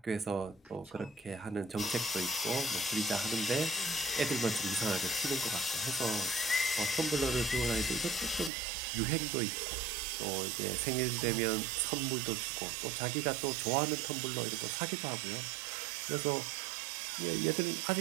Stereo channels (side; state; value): left; drops out; at 8.5 s